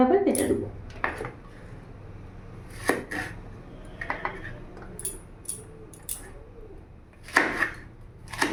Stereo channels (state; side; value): identical; both; correlation 1.00